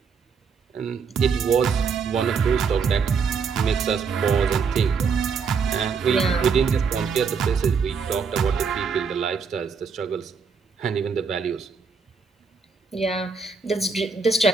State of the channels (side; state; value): left; quieter; 5.6 dB